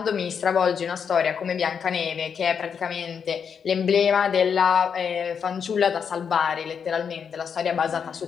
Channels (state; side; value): quieter; right; 6.9 dB